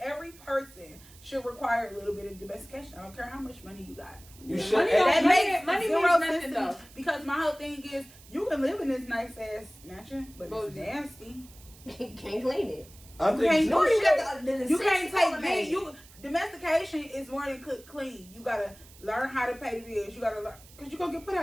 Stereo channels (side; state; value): right; noise; hiss, 22 dB below the sound